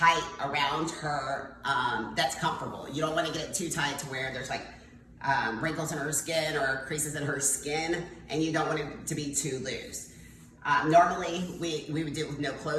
around her that's comfortable. You don't want to get it too tight to where there's like wrinkles in her skin or creases in her skin, and you don't want it to be too loose. Normally we would do it with no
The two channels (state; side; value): identical; both; correlation 1.00